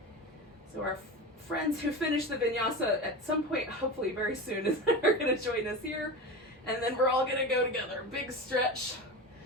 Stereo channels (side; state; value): both; normal; correlation 0.26